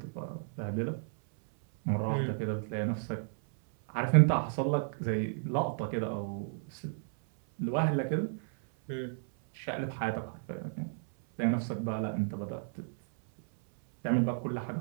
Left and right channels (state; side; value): silent; left; 56 dB below the other